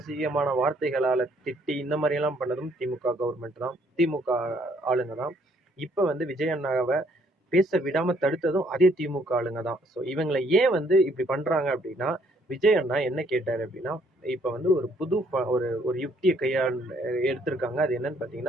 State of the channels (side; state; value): both; normal; correlation 0.66